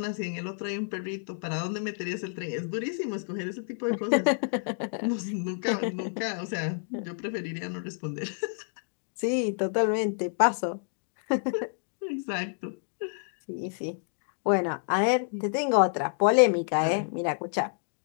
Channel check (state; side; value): silent; right; digital silence